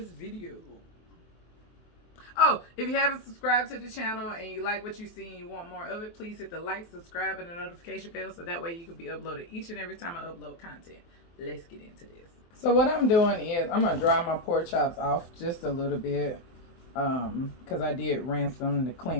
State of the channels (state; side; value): late; right; 23 ms